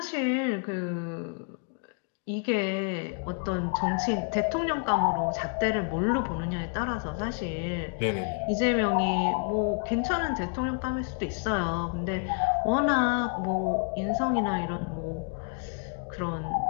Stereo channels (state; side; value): quieter; right; 39.7 dB